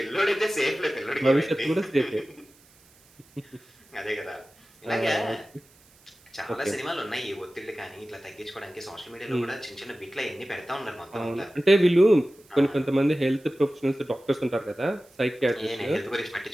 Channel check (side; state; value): right; noise; hiss, 29 dB below the sound